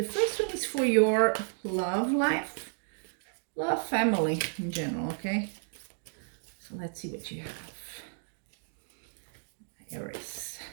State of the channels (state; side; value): silent; left; digital silence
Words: first one is for your love life, love, family in general, okay? So let's see what you have. Aries.